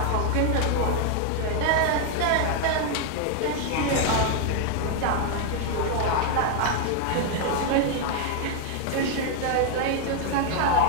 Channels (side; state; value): both; different; correlation 0.00